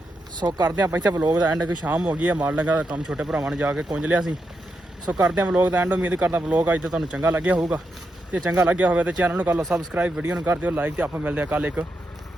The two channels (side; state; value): both; normal; correlation 0.85